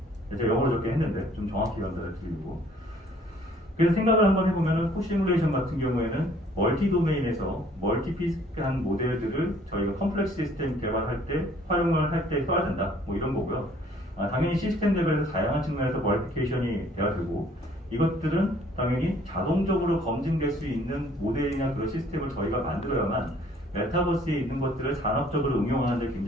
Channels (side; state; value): both; normal; correlation 0.58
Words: 제가 영어로 적게 했는데 좀 정확히 연달아 드리고. 그래서 생각을 한번 해보면은 코시뮬레이션 같은 경우에는 멀티 도메인에서 멀티피스한 모델들을 저희가 컴플렉스 시스템 개발할 때 활용을 할 때 써야 된다. 뭐 이런 거고요. 당연히 시스템 레벨에서 다양한 측면에서 버리피케이션이 돼야 되고 이것들은 당연히 자동적으로 검증될 수 있는 모델이나 그런 시스템을 저희가 만들어야만 메타버스에 있는 것들을 산업적으로 응용하는 데